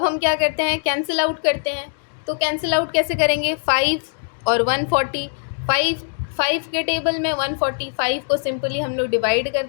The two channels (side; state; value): right; silent; digital silence